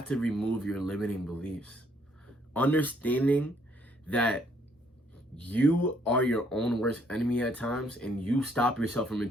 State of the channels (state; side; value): normal; both; correlation 0.67